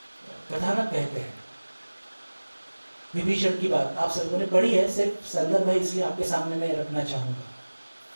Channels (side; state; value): both; inverted; correlation -1.00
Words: कथानक कहते हैं विभीषण की बात, आप सबों ने पढ़ी है, सिर्फ संदर्भ है इसलिए आपके सामने मैं रखना चाहूंगा